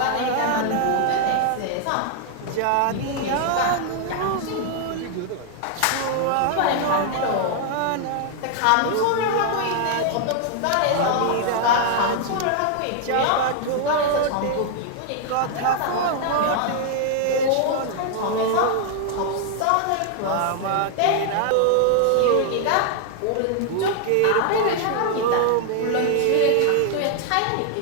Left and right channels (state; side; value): different; both; correlation 0.00